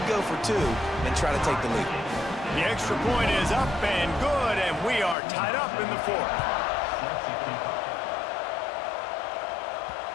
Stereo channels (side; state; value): right; drops out; at 5.2 s